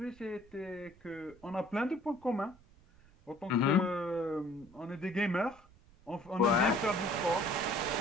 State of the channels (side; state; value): right; noise; rumble, 26 dB below the sound